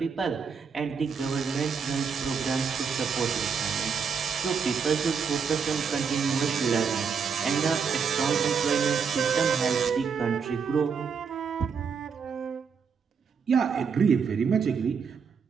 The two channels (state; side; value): quieter; left; 6.0 dB